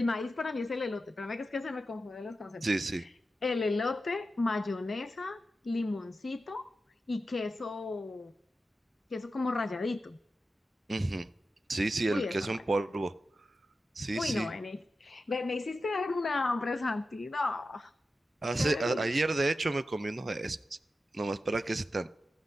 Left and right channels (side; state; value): both; normal; correlation 0.91